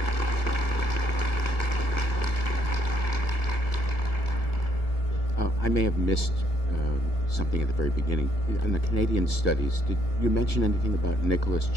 I may have missed something at the very beginning. In the Canadian studies, did you mention anything about Nicholas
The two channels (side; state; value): right; late; 1.5 ms